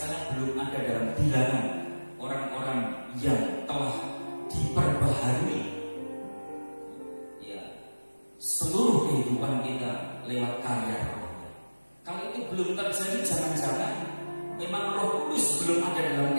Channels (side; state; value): both; inverted; correlation -1.00